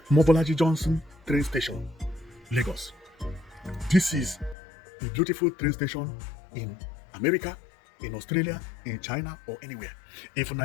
Mobolaji Johnson train station, Lagos. This is a beautiful train station in America, in Australia, in China, or anywhere. If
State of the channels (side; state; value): right; drops out; at 4.5 s